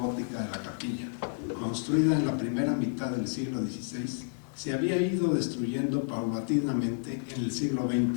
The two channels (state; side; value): silent; right; 57 dB below the other